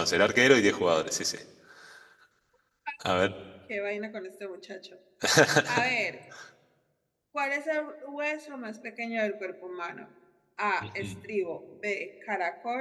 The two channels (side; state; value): both; identical; correlation 1.00